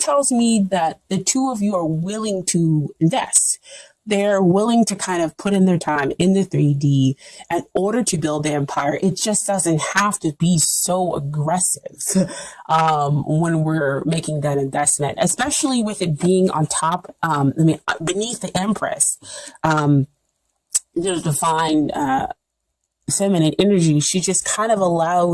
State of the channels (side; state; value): both; identical; correlation 1.00